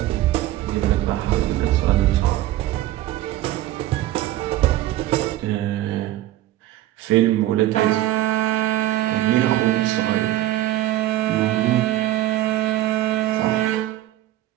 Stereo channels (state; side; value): quieter; left; 14.8 dB